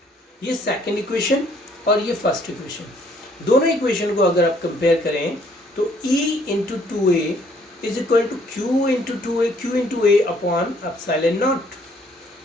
ये सेकंड इक्वेशन और ये फर्स्ट इक्वेशन, दोनों इक्वेशन को अगर आप कंपेयर करें तो E into two A is equal to Q into A upon epsilon not.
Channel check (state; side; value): normal; both; correlation 0.63